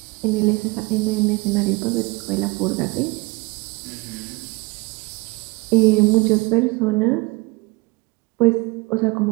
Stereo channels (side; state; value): left; quieter; 25.4 dB